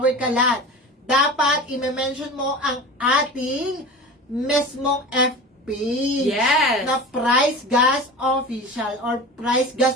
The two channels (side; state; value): both; normal; correlation 0.33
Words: Kalan. Dapat i-mention mo ang ating mismong FP Yes. na Price Gas Official or Price